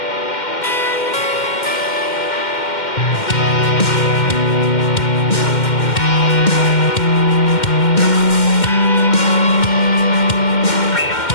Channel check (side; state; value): right; late; 2.1 ms